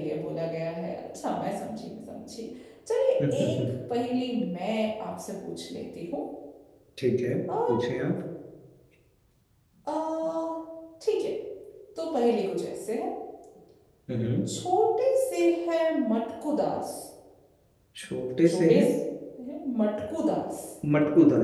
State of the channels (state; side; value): identical; both; correlation 1.00